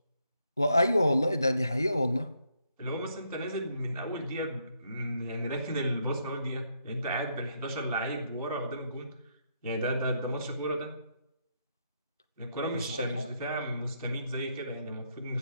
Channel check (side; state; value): both; inverted; correlation -0.75